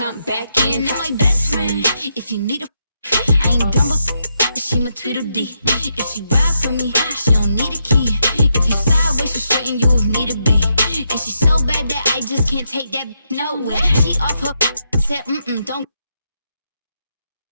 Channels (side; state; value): both; inverted; correlation -0.81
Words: back in. That's my best friend. If you need a, I ain't dumb, but she my Tweedledee. If she ride for me, she don't need a key. If you sideways, she straighten you if need to be. And she's so bad that I just can't take that nowhere. She off her said, don't.